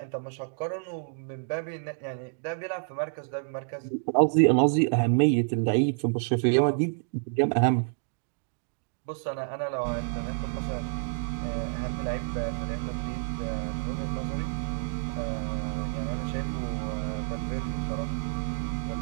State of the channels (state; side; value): silent; left; digital silence